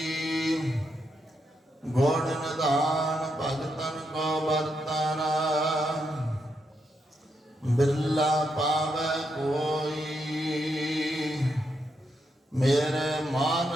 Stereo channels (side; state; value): both; normal; correlation 0.81